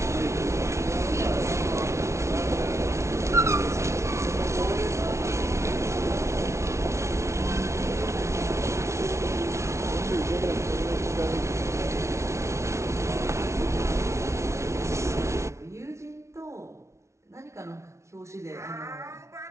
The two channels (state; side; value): late; left; 0.13 ms